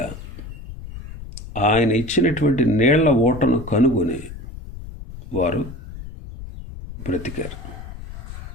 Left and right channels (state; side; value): noise; left; rumble, 12 dB below the sound